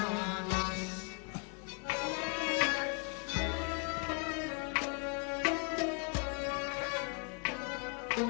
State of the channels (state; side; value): quieter; right; 36.9 dB